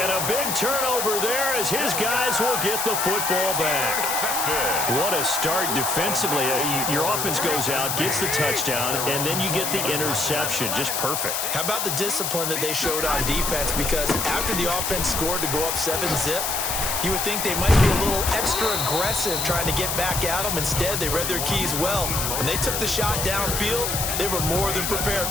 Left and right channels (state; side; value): noise; left; hiss, 1 dB below the sound